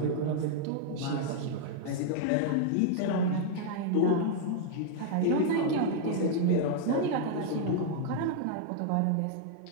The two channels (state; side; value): different; both; correlation -0.01